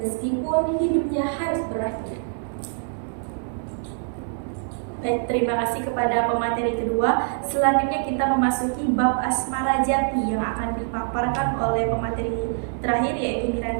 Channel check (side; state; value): left; silent; digital silence